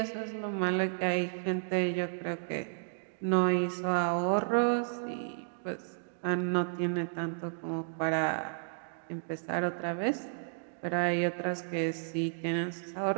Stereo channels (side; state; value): left; silent; digital silence